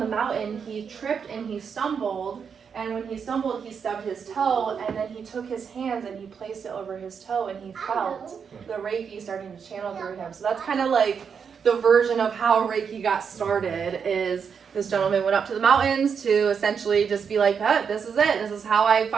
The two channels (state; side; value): quieter; left; 6.6 dB